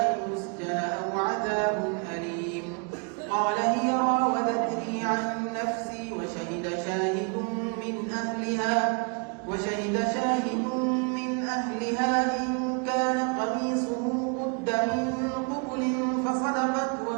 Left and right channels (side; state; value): left; quieter; 35.0 dB